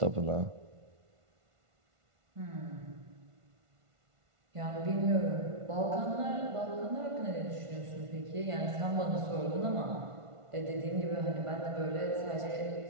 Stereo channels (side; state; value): left; late; 1.5 ms